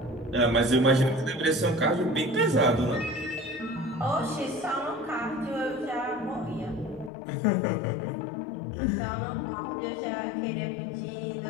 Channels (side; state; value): right; drops out; at 7.1 s